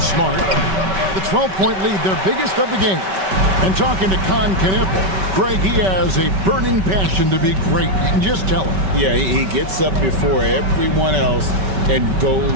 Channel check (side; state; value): left; late; 5.2 ms